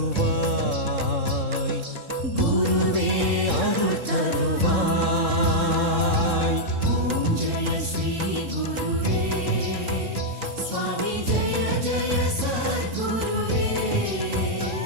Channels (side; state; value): left; late; 3.7 ms